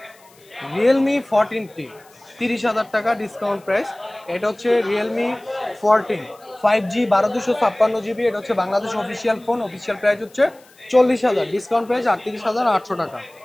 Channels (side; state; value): left; noise; hiss, 29 dB below the sound